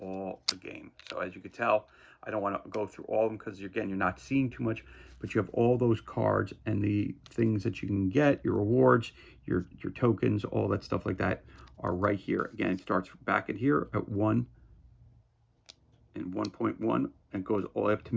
all the game. So as you can tell, I don't want to go through all of them because, again, you're not seeing too much, but you have all those cards and the things that you can get, your rewards, your tokens, all that stuff like that are right here. Again, it starts back at here at 1 and 1.1 and goes all the way up to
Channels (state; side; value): identical; both; correlation 1.00